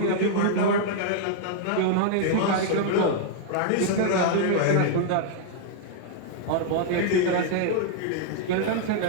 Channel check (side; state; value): both; different; correlation -0.01